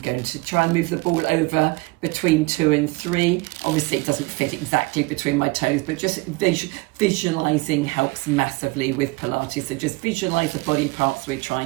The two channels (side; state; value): left; quieter; 25.0 dB